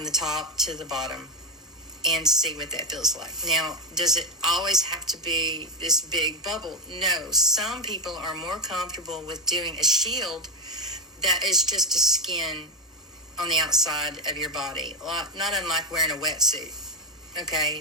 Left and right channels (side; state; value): both; normal; correlation 0.09